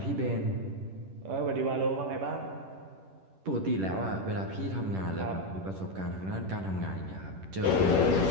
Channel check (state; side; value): late; left; 10 ms